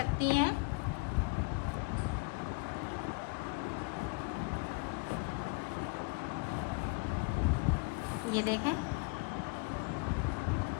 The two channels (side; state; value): right; quieter; 29.1 dB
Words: हैं। ये देखें,